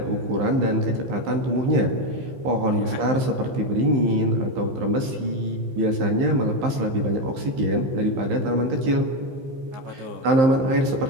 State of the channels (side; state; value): left; late; 15 ms